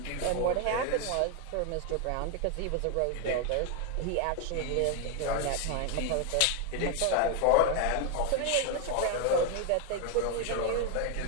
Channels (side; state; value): both; different; correlation 0.01